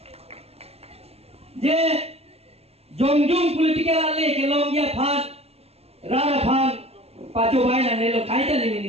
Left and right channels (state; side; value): late; left; 0.29 ms